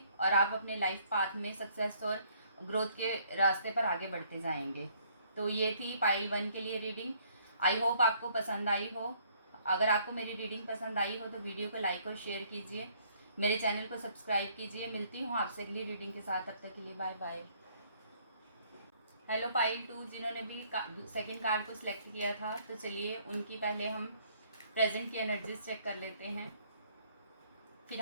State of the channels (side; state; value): both; inverted; correlation -0.64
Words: और आप अपने लाइफ पाथ में सक्सेस और ग्रोथ के रास्ते पर आगे बढ़ते जाएंगे। तो ये थी पाइल 1 के लिए रीडिंग। आई होप आपको पसंद आई हो। अगर आपको मेरी रीडिंग पसंद आई हो तो वीडियो को लाइक और शेयर कीजिए, मेरे चैनल को सब्सक्राइब कीजिए। मिलती हूँ आपसे अगली रीडिंग के साथ, तब तक के लिए बाय बाय। हेलो पाइल 2 जिन्होंने भी सेकंड कार्ड को सिलेक्ट किया था, तो चलिए उनकी पहले हम प्रेजेंट की एनर्जीज चेक कर लेते हैं, फिर